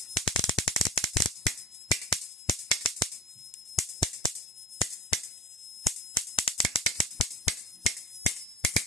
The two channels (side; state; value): both; normal; correlation 0.37